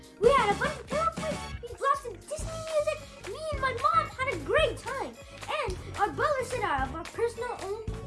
We had a bunch of pillow fights, we blasted Disney music, me and my mom had a great time. And our butler set out our personal own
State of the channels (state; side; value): identical; both; correlation 1.00